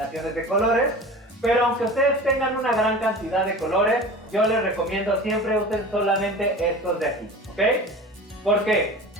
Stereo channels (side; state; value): both; normal; correlation 0.36